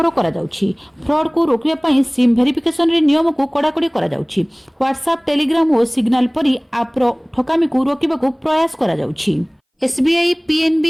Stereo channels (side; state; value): both; identical; correlation 1.00